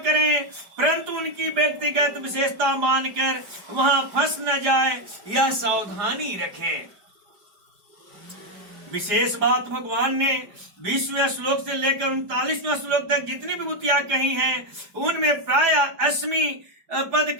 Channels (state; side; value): late; left; 4.9 ms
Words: परंतु उनकी व्यक्तिगत विशेषता मानकर वहां फंस न जाए, यह सावधानी रखें। विशेष बात भगवान ने 20वें श्लोक से लेकर 39वें श्लोक तक जितनी विभूतियां कही हैं उनमें प्राय 80 पद